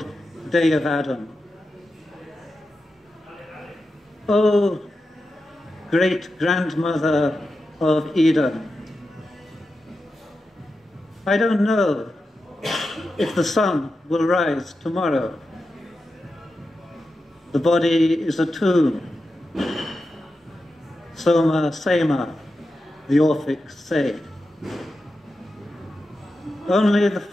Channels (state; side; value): normal; both; correlation 0.90